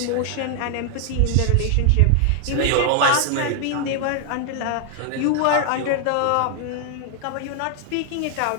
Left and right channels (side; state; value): both; different; correlation 0.00